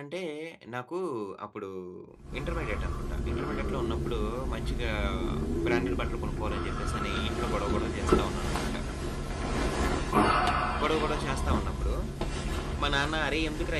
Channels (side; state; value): both; identical; correlation 1.00